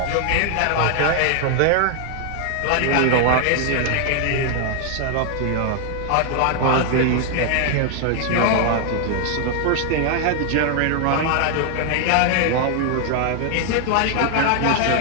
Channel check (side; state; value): both; different; correlation 0.00